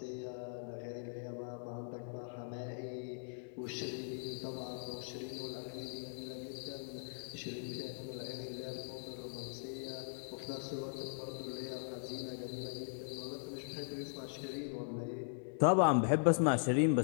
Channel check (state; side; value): silent; right; digital silence